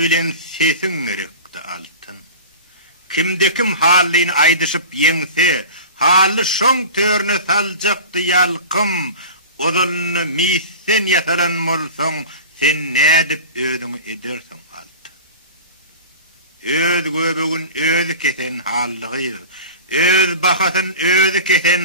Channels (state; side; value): inverted; both; correlation -0.35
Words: sesin gerekti altın. Kimde kim halini aydışıp yense, hali şon törünü salcaktı yalkım, odalını misen yataran molson, sen ne edip ödünü edersin altı. Öd göbegün ödü kesen halliğir, öd bakasın ödü